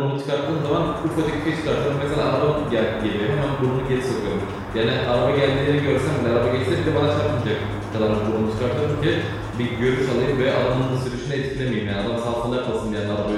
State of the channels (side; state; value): both; identical; correlation 1.00